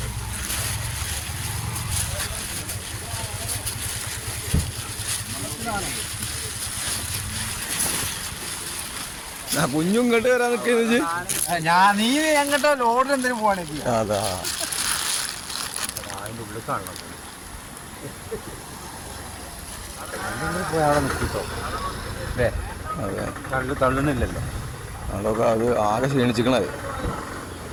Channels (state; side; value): identical; both; correlation 1.00